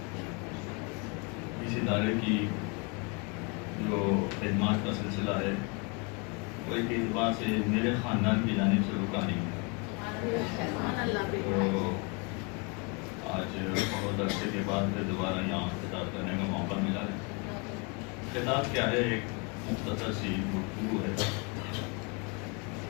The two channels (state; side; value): quieter; right; 31.7 dB